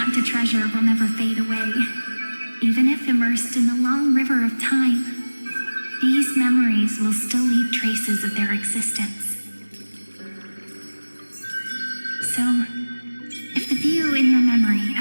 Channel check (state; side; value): inverted; both; correlation -1.00